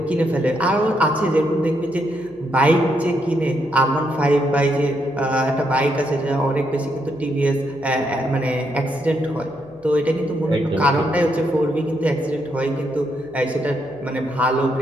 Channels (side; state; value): right; noise; hum, 29 dB below the sound